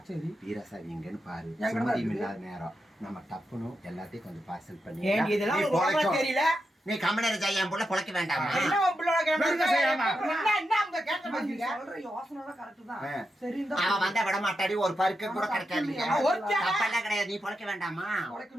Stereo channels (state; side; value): normal; both; correlation 0.87